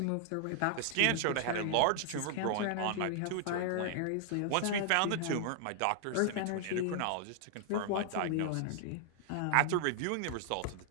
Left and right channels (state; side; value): different; both; correlation 0.00